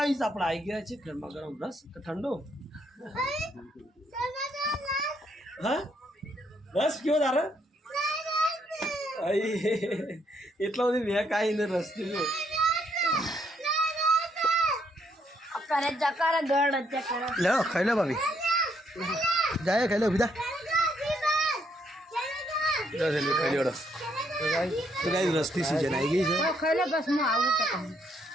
આપણે આવી ગયા છે ગરમા ગરમ રસ કે ઠંડો? હા રસ કયો તારે? એટલો બધી મેં કાંઈ ને રસ પીધો. લે ખાઈ લે ભાભી, જાય ખાઈ લે બીજા ખાઈ લે. તો ગાઈ રસની સિઝન આવી ગઈ છે.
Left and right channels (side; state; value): both; normal; correlation 0.73